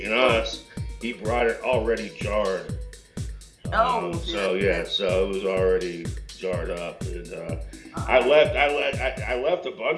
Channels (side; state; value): both; identical; correlation 1.00